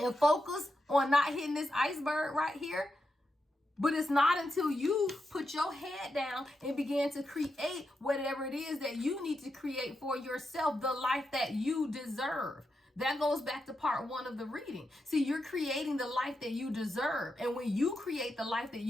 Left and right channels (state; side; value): normal; both; correlation 0.86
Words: focus on not hitting this iceberg right here. But it's not until you put your head down and begin to create whatever it is that you need to create for yourself, the life that you deserve. That goes back to part 1 of the reading. See, you're creating the life that you deserve. And when you create the life that